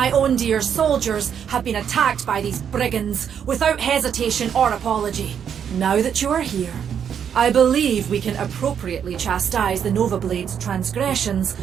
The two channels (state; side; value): quieter; left; 8.1 dB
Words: own dear soldiers have been attacked by these brigands without hesitation or apology. Now that you are here, I believe we can appropriately chastise the Nova Blades' transgressions